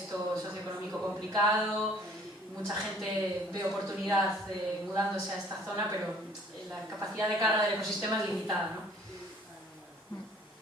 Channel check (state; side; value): normal; both; correlation 0.56